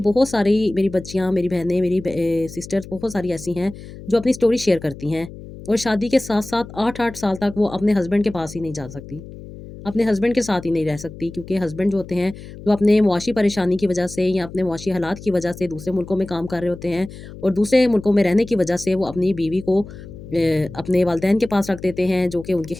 सारी मेरी बच्चियाँ, मेरी बहनें, मेरी सिस्टर्स बहुत सारी ऐसी हैं जो अपनी स्टोरी शेयर करती हैं और शादी के साथ-साथ 8-8 साल तक वो अपने हस्बैंड के पास ही नहीं जा सकती। अपने हस्बैंड के साथ ही नहीं रह सकती क्योंकि हस्बैंड जो होते हैं, वो अपने मुआशी परेशानी की वजह से या अपने मुआशी हालात की वजह से दूसरे मुल्कों में काम कर रहे होते हैं और दूसरे मुल्कों में रहने की वजह से वो अपनी बीवी को अपने वालिदैन के पास रख देते हैं, जो कि उनकी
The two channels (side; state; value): left; noise; hum, 15 dB below the sound